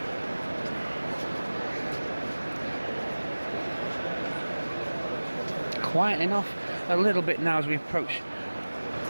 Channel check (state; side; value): inverted; both; correlation -1.00